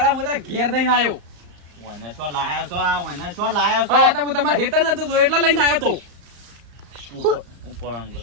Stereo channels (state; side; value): late; left; 35 ms